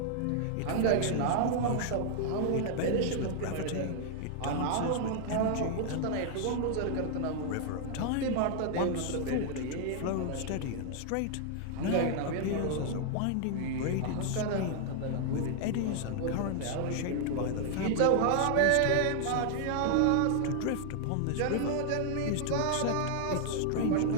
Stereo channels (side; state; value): both; different; correlation 0.00